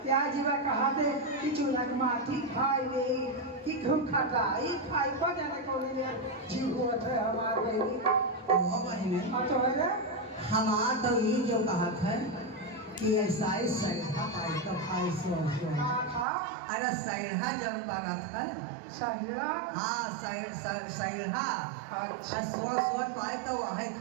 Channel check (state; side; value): drops out; left; at 16.2 s